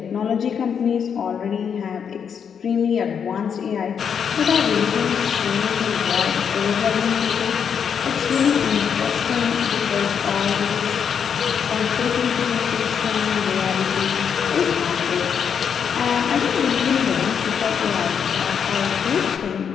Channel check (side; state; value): right; quieter; 7.3 dB